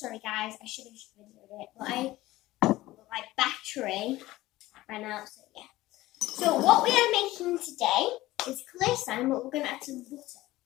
guys. I should have videoed it, but my battery ran out, so yeah. So what we are making today is clear slime, but we're going to add some butter.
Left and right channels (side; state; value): right; quieter; 17.4 dB